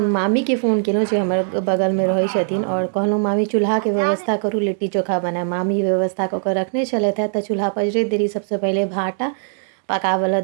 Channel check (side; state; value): left; silent; 66 dB below the other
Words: मामी के फ़ोन केलहुँ जे हमर बगलमे रहै छथिन और कहलहुँ मामी चूल्हाके व्यवस्था करू, लिट्टी चोखा बनायब। मामी व्यवस्था कऽ कऽ रखने छलथि हैं। तऽ चूल्हा पजरैत देरी सबसँ पहिले भाटा पकाबऽ